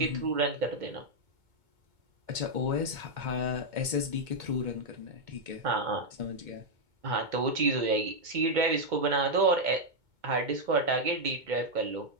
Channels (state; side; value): late; left; 2.2 ms